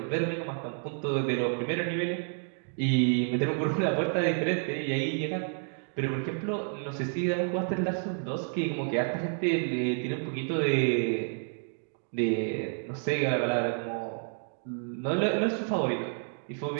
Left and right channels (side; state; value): left; silent; 58 dB below the other